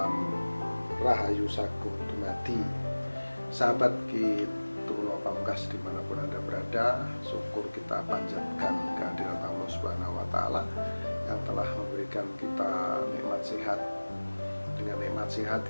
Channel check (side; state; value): both; inverted; correlation -1.00